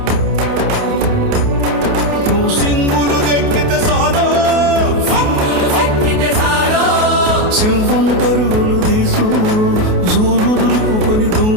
నువ్వు సింగులు ఎక్కితే సాలో, సింహం పరుగులు తీసు, జూలు దులుపుకొని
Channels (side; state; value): left; late; 28 ms